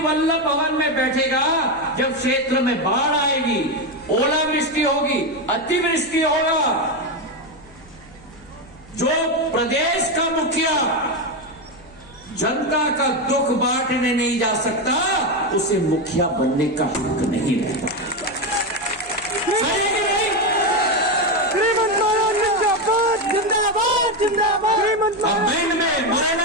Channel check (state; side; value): noise; left; hum, 25 dB below the sound